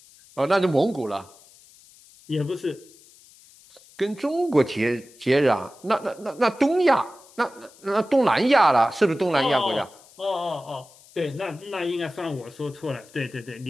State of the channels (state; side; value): noise; left; hiss, 25 dB below the sound